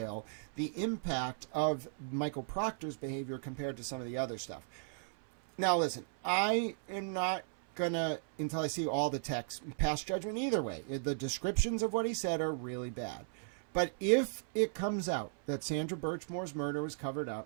the impact of Michael Proctor's behavior compared to some of the other stuff. Now, listen, I am not gonna, until I see all the text, pass judgment either way. The descriptions of what he said are really bad. But if it comes out that Sandra Birchmore's murder was covered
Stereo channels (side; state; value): left; silent; 54 dB below the other